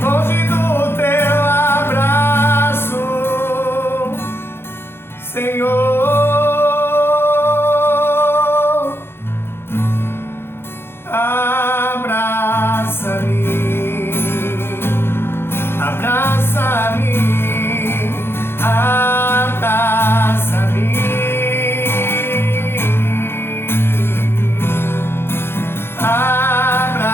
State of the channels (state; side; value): late; right; 0.11 ms